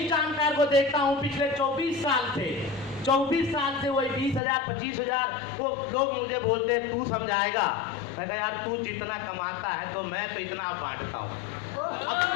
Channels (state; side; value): drops out; right; at 4.4 s